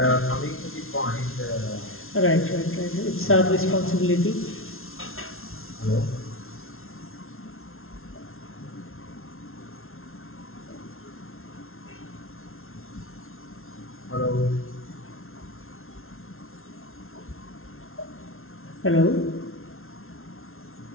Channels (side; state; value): right; late; 0.62 ms